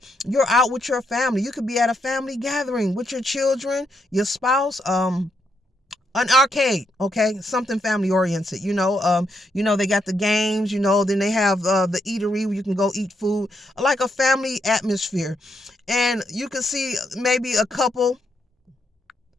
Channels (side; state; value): both; normal; correlation 0.79